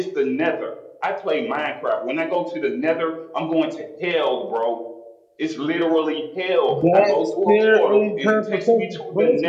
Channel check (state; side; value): identical; both; correlation 1.00